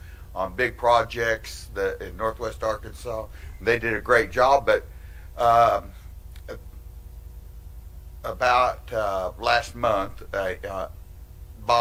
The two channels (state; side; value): identical; both; correlation 1.00